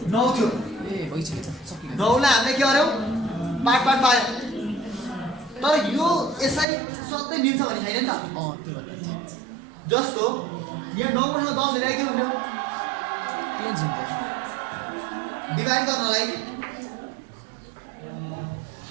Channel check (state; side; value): drops out; left; at 6.7 s